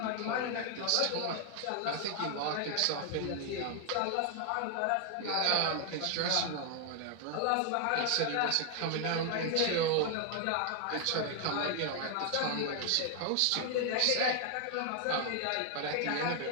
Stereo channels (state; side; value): different; both; correlation 0.00